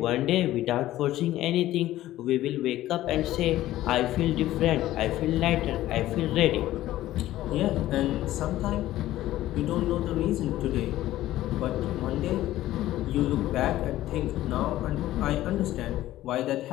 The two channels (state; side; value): quieter; right; 14.7 dB